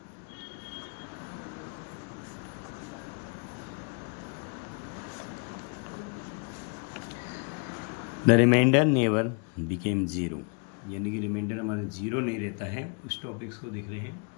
The remainder never became zero. यानी कि रिमाइंडर हमारा जीरो नहीं रहता है. उस टॉपिक्स को देख रहे हैं.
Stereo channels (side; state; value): right; quieter; 36.9 dB